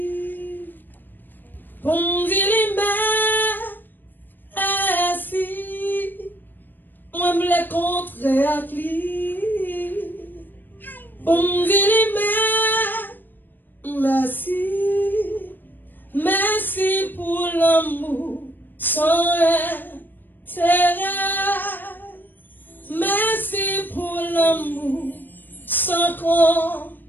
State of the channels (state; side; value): late; right; 0.092 ms